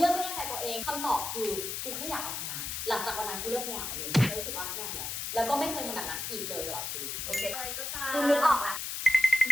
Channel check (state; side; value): noise; left; hiss, 4 dB below the sound